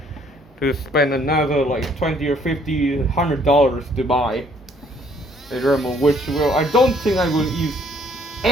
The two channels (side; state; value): both; normal; correlation 0.63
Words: spend another like $20 or $50, $100 to buy a Dremel, which I don't think I will use